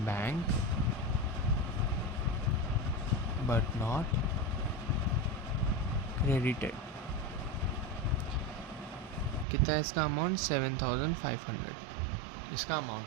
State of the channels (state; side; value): drops out; left; at 9.5 s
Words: bank but not credited. कितना है इसका अमाउंट, 7500 इसका अमाउंट